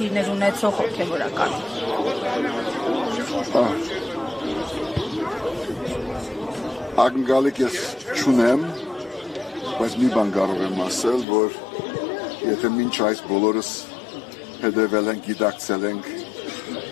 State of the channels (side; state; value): right; drops out; at 11.2 s